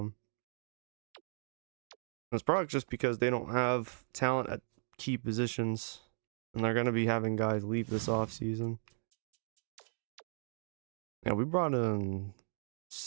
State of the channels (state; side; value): silent; left; digital silence